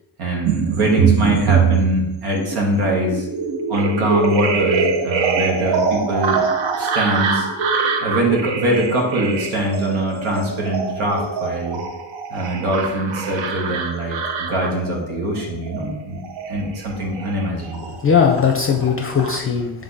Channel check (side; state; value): both; normal; correlation 0.16